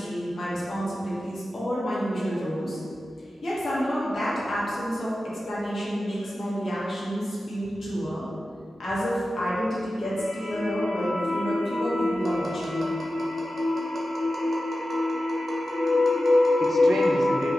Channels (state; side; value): normal; both; correlation 0.93